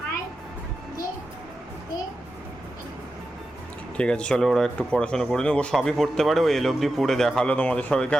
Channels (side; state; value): both; normal; correlation 0.91